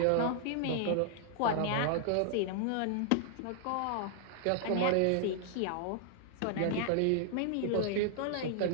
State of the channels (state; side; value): different; both; correlation 0.00